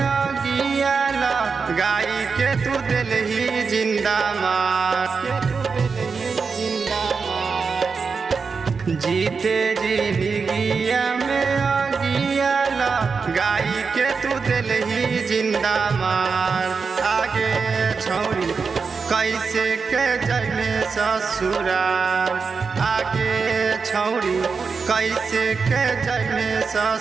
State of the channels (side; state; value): left; quieter; 5.1 dB